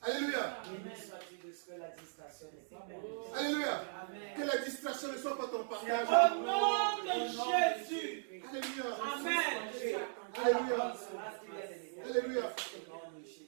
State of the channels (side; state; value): left; silent; digital silence